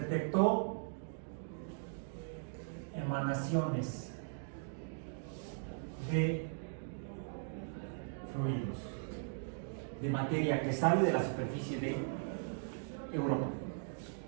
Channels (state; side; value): silent; left; digital silence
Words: emanaciones de fluidos, de materia que sale de la superficie de Europa.